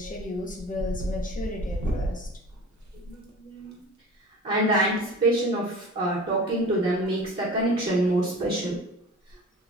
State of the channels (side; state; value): both; normal; correlation 0.39